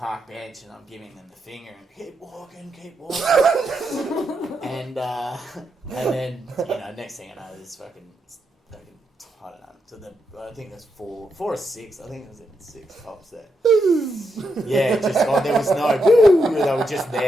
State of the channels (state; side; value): normal; both; correlation 0.82